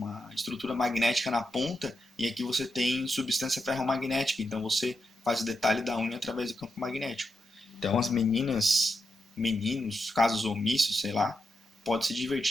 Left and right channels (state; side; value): normal; both; correlation 0.86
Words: estrutura magnética na ponta e aqui você tem substância ferromagnética, então você faz o detalhe da unha através do campo magnético. Então as meninas, meninos, casos omissos, sei lá, pode se